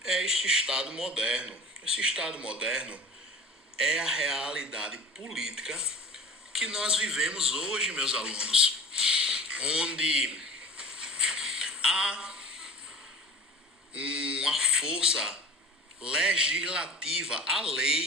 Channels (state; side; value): normal; both; correlation 0.40